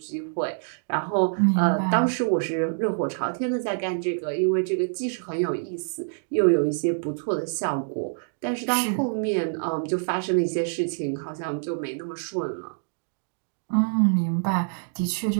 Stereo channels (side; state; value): left; silent; digital silence